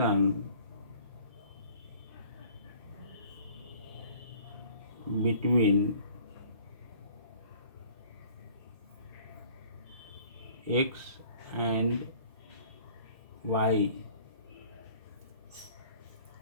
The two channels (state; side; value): inverted; both; correlation -0.52